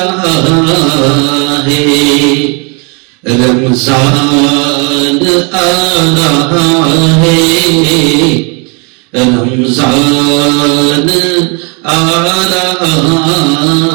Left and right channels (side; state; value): left; quieter; 33.5 dB